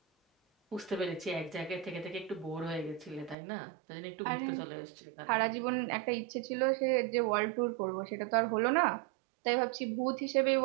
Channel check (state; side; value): drops out; left; at 3.4 s